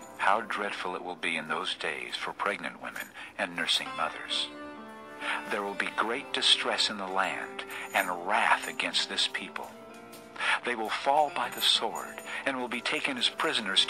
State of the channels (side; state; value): both; identical; correlation 1.00